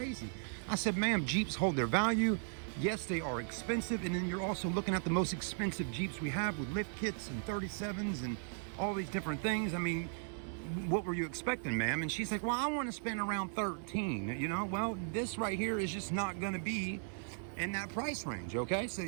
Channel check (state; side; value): silent; left; digital silence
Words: I said, ma'am, Jeeps hold their value. Yes, they are expensive. And then you're also looking at the most expensive Jeeps we have with lift kits and 37s and all these different things. I mean, what were you expecting, ma'am? And she's like, well, I want to spend around 13, you know? Well, this right here is just not going to be in that price range, okay? So